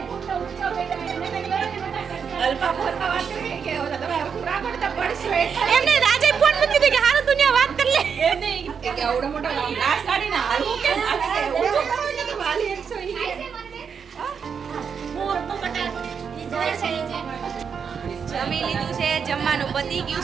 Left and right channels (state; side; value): quieter; left; 6.6 dB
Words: એમને રાજે ફોન મૂકી દીધી કે હારું દુનિયા વાત કરી લે. એ નહીં કે આવડો મોટો ગ્લાસ કાઢીને હાલવું કે જમી લીધું છે, જમવાનું પતી ગયું